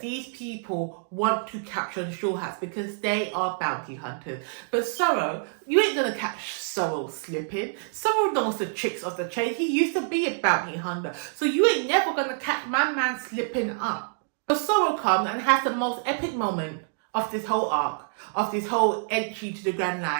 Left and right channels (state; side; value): silent; left; digital silence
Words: these people want to capture the Straw Hats because they are bounty hunters. But Zoro, you ain't gonna catch Zoro slipping. Zoro knows the tricks of the trade. He used to be a bounty hunter. So you ain't never gonna catch my man slipping up. So Zoro comes and has the most epic moment of this whole arc, of this whole entry to the Grand